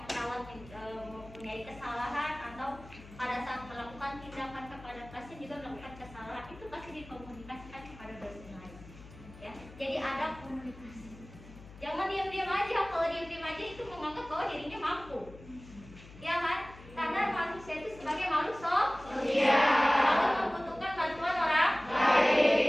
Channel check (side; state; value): left; noise; hum, 19 dB below the sound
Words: perawat mempunyai kesalahan atau pada saat melakukan tindakan kepada pasien juga melakukan kesalahan, itu pasti dikomunikasikan kepada dosen lain. Ya, jadi ada komunikasi. Jangan diam-diam aja. Kalau diam-diam aja itu menganggap bahwa dirinya mampu, ya kan? Karena manusia itu sebagai makhluk sosial, kalau membutuhkan bantuan orang